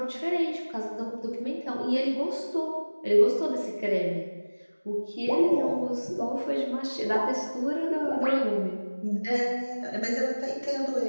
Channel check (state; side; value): inverted; both; correlation -1.00